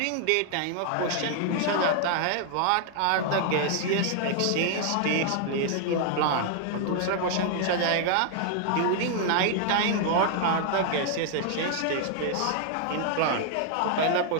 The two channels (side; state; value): both; different; correlation 0.00